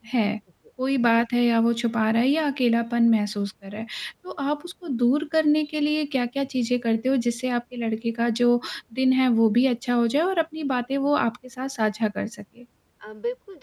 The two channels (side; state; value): both; identical; correlation 1.00